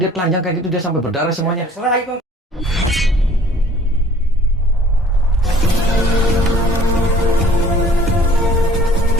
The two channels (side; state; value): both; normal; correlation 0.53